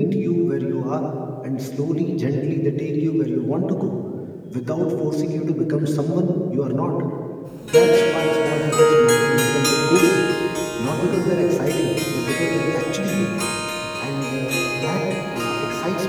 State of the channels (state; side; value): identical; both; correlation 1.00